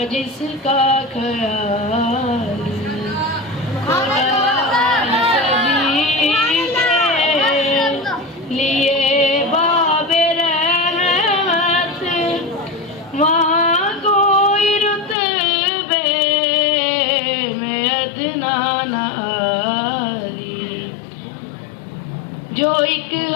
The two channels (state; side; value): drops out; right; at 15.2 s